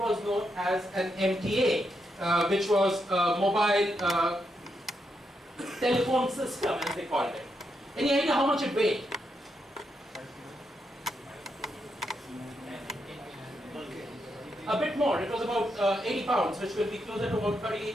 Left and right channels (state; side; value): normal; both; correlation 0.82